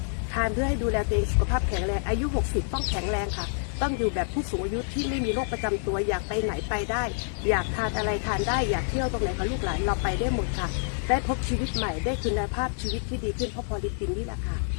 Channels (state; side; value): silent; right; digital silence